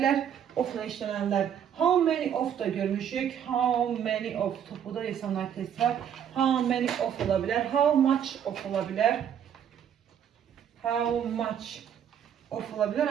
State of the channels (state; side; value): quieter; left; 9.0 dB